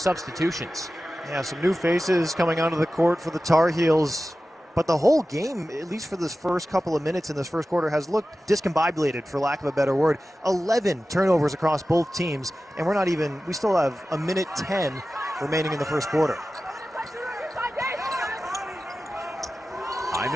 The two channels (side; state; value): both; normal; correlation 0.95